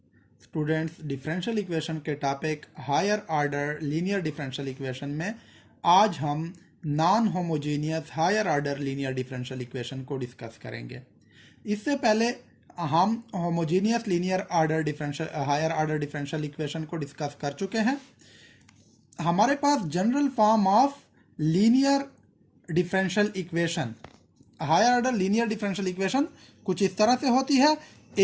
differential equation के topic higher order linear differential equation में आज हम non homogeneous higher order linear differential equation को डिस्कस करेंगे। इससे पहले हम homogeneous linear order differential higher order differential equation को डिस्कस कर चुके हैं। हमारे पास general form of linear differential equation higher order linear differential equation कुछ इस तरह से होती है:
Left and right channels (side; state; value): both; identical; correlation 1.00